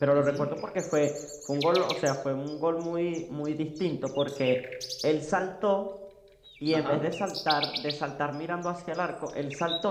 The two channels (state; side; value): identical; both; correlation 1.00